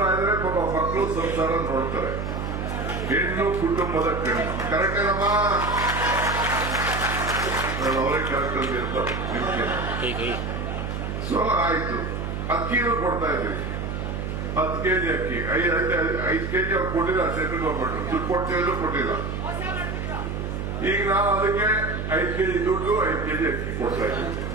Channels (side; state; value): right; noise; hum, 4 dB below the sound